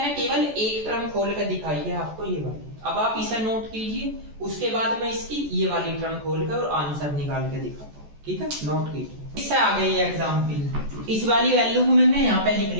केवल एक टर्म खोल कर दिखाई है आपको, ये वाली। अब आप इसे नोट कीजिए, उसके बाद मैं इसकी ये वाली टर्म खोल कर और आंसर निकाल के दिखाता हूँ, ठीक है, नोट कीजिए। इससे आ गई एग्जाम्पल, इस वाली वैल्यू को मैंने यहाँ पे लिख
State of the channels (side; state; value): left; late; 14 ms